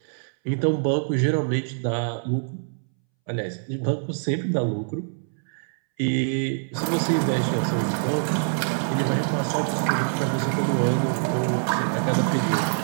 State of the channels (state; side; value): silent; left; 62 dB below the other